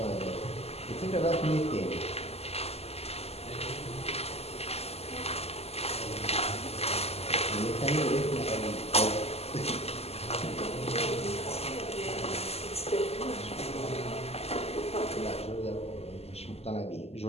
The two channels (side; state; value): right; late; 0.29 ms